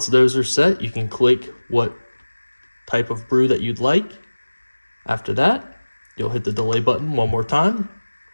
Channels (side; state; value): both; inverted; correlation -1.00